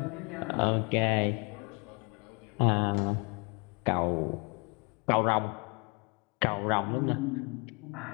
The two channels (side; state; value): right; quieter; 31.4 dB